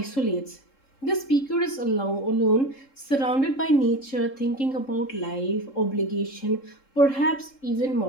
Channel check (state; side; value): late; right; 3.7 ms